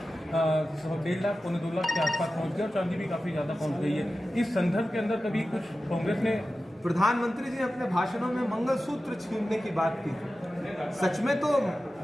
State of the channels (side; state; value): both; normal; correlation 0.94